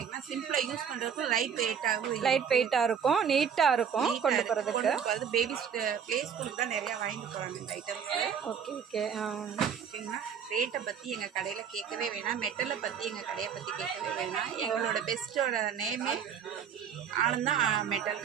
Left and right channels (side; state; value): left; quieter; 7.6 dB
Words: சிம்பிளாக யூஸ் பண்ணுறதுக்கு லைட் வெயிட்டாக இருக்கும், நீட்டாக இருக்கும் கொண்டு போகிறதுக்கு. பேபிஸ் ப்ளே ஸ்கூலுக்கு தான் நிறையா வாங்கிட்டு போகிறாங்க இந்த ஐட்டம்ஸு. Okay okay. ஓகேங்களா. ரேட்டை பற்றி எங்கள் கடையில் கேட்கவே வேணாம், மெட்டலை பற்றி எங்கள் கடையை பற்றி கேட்கவே வேணாம். எங்களோட பெஸ்ட்டோட நேமே ஆனந்தா மெட்டல்.